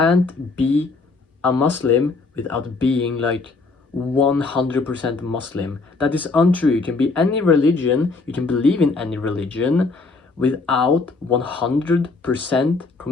be a Muslim without being like 100% Muslim. That is untrue. You can be any religion, you can believe in any religion without 100%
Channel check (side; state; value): right; quieter; 3.9 dB